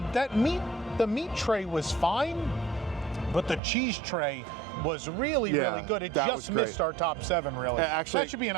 that meat. The meat tray was fine, but the cheese tray was really good. It just missed our top 7, really. Actually, that should be an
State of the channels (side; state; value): left; drops out; at 3.6 s